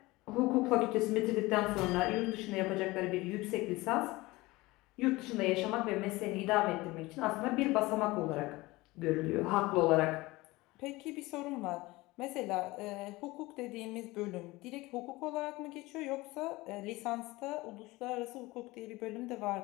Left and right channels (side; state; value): right; quieter; 20.8 dB